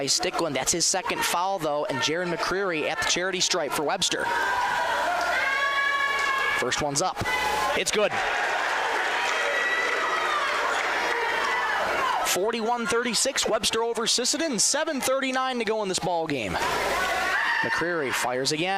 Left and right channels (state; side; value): identical; both; correlation 1.00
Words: Stickland. That's his second foul, though, and Jaron McCreary at the charity stripe for Webster. First one's up. It's good. 41-36, Webster over Sisseton. 7:39 to go in this ball game. McCreary fires